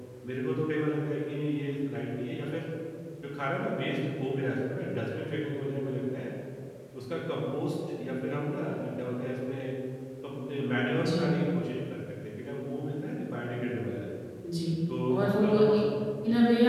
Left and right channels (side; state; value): both; identical; correlation 1.00